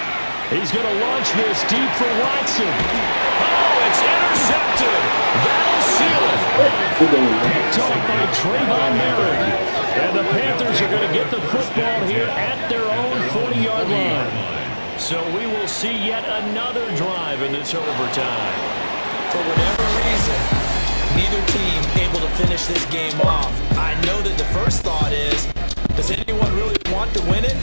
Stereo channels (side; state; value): both; inverted; correlation -1.00